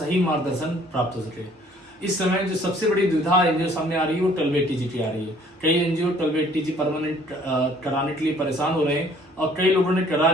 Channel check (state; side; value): normal; both; correlation 0.58